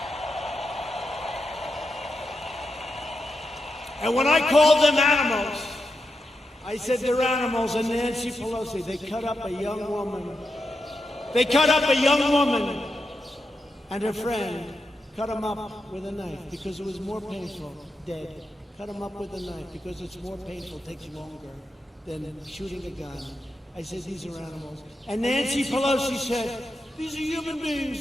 And when I called them animals, I said they're animals, and Nancy Pelosi, they cut up a young woman. They cut up a young woman, and her friend cut him up with a knife because it was more painful, dead. Cut him up with a knife because it's more painful, takes longer than shooting a gun. I said, these are animals. And Nancy Pelosi said, these are human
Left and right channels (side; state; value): both; normal; correlation 0.87